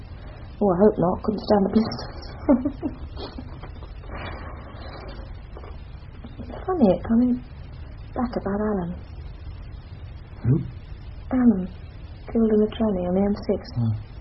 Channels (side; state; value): both; identical; correlation 1.00